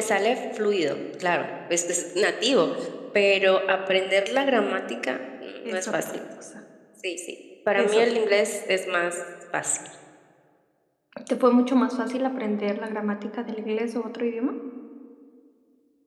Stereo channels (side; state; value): both; identical; correlation 1.00